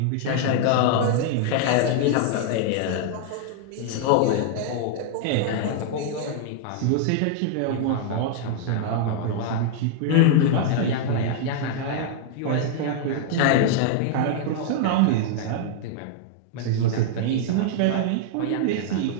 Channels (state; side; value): different; both; correlation -0.01